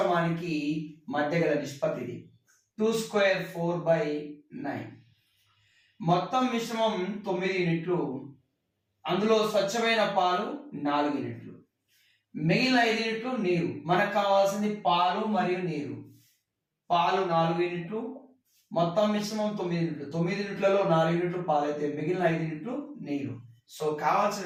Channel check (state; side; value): identical; both; correlation 1.00